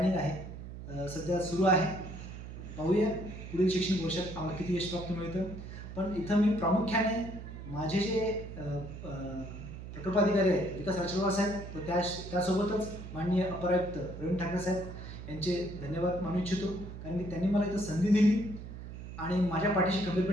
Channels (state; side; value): noise; right; hum, 11 dB below the sound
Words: आहे सध्या सुरू आहे. पाहूया पुढील शैक्षणिक वर्षात आम्हाला किती यश प्राप्त मिळतं. पण इथं मी प्रामुख्याने माझे जे प्रकल्पाधिकारी आहेत विकास राजवार साहेब व त्यासोबतच माननीय अपर आयुक्त प्रवीण ठाकरे साहेब यांचे धन्यवाद मानू इच्छितो, कारण की त्यांनी मला इथं संधी दिली आणि माझ्या पाठीशी